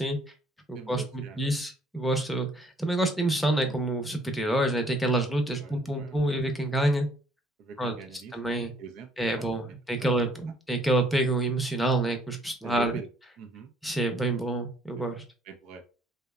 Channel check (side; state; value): both; normal; correlation 0.63